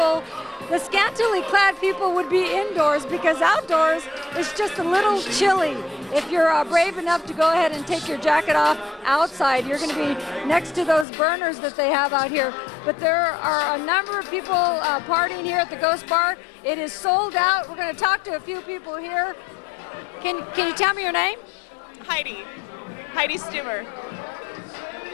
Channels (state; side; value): drops out; right; at 11.1 s